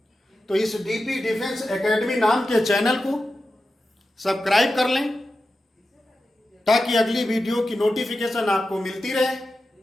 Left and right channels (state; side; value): normal; both; correlation 0.92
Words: तो इस डीपी डिफेंस एकेडमी नाम के चैनल को सब्सक्राइब कर लें ताकि अगली वीडियो की नोटिफिकेशन आपको मिलती रहे।